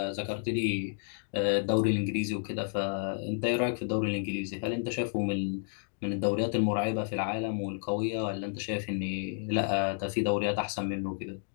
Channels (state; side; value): silent; right; digital silence